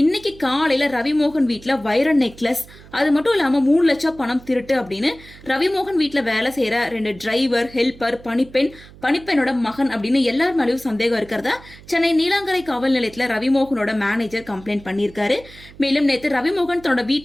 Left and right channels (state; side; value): noise; right; hum, 21 dB below the sound